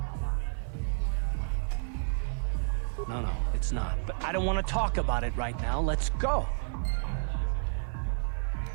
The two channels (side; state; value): left; silent; digital silence